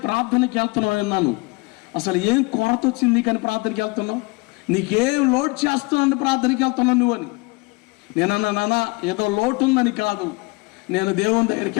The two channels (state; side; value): quieter; right; 26.7 dB